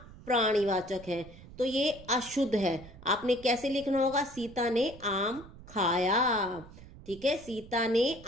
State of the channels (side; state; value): right; noise; rumble, 18 dB below the sound